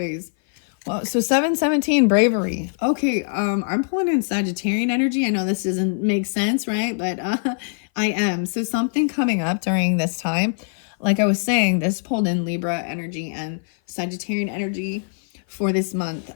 Well, so 717, bravery. Okay, I'm pulling in Sagittarian energy. I know this doesn't make sense, right? But I am. So something coming up during this time. Like I was saying, this pulled in Libra energy and Sagittarian energy for this month.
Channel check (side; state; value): right; silent; 57 dB below the other